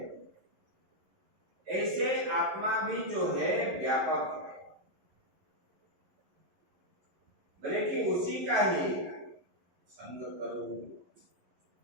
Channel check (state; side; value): late; left; 11 ms